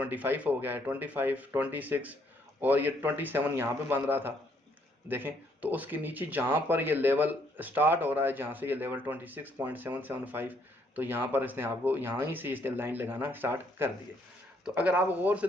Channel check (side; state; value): both; normal; correlation 0.69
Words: हो गया है, 25, 26 और ये 27 यहाँ पे बन रहा था। देखें तो उसके नीचे जहाँ पर ये लेवल स्टार्ट हो रहा है, जहाँ से ये लेवल 26.775, तो यहाँ पर इसने आपको यहाँ ही से इसने लाइन लगाना स्टार्ट कर दिए। तो अगर आप गौर से